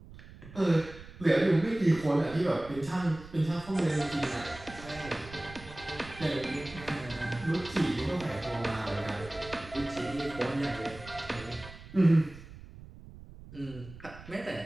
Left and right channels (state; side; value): noise; right; rumble, 17 dB below the sound